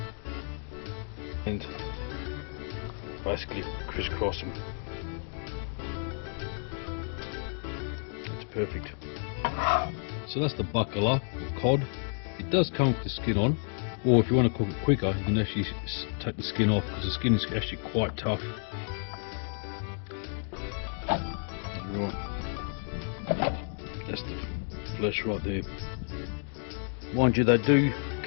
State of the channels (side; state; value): right; silent; 57 dB below the other